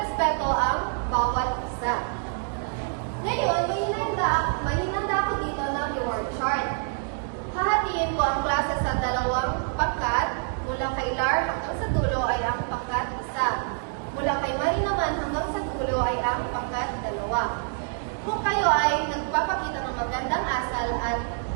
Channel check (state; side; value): silent; left; 61 dB below the other